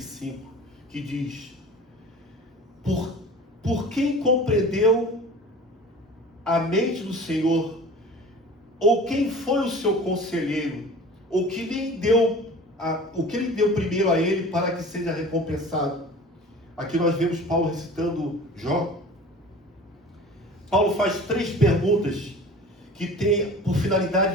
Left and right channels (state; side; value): normal; both; correlation 0.41